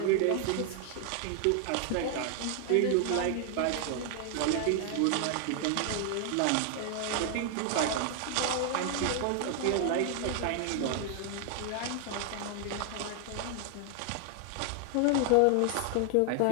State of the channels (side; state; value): both; different; correlation 0.00